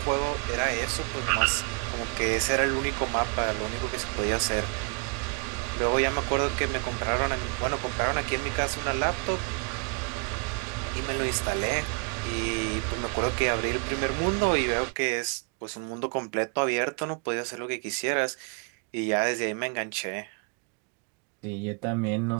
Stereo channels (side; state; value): left; quieter; 33.8 dB